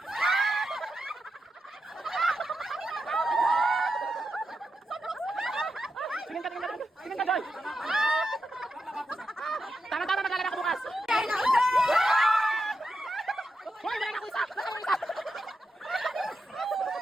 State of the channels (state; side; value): normal; both; correlation 0.87